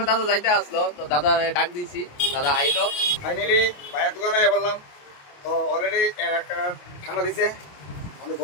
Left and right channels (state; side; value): late; right; 28 ms